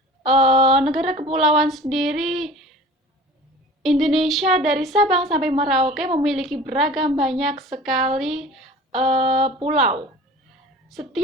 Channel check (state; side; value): normal; both; correlation 0.42